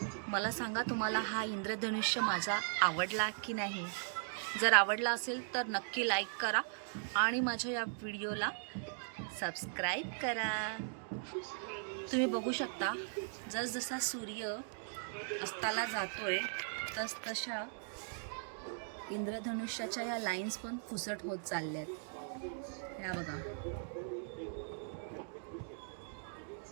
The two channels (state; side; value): silent; left; digital silence